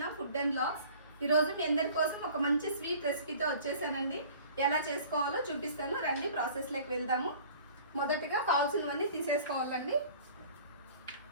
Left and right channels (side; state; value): both; inverted; correlation -0.47